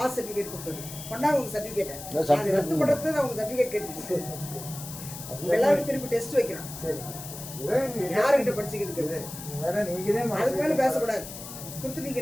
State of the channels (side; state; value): left; noise; hiss, 11 dB below the sound